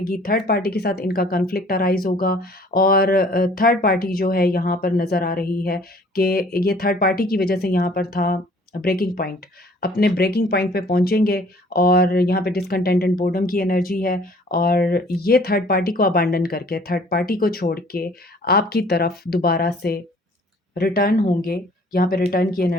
थर्ड पार्टी के साथ इनका कॉन्फ्लिक्ट अराइज़ होगा और थर्ड पार्टी जो है यहाँ पर नज़र आ रही है कि ये थर्ड पार्टी की वजह से यहाँ पर था ब्रेकिंग पॉइंट। अपने ब्रेकिंग पॉइंट पे पहुँचेंगे और यहाँ पे डिसकंटेंट एंड बोर्डम की एनर्जी है और ये थर्ड पार्टी को अबैंडन करके, थर्ड पार्टी को छोड़ के आपकी तरफ दोबारा से रिटर्न होंगे। यहाँ पे रिटर्न की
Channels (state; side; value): normal; both; correlation 0.54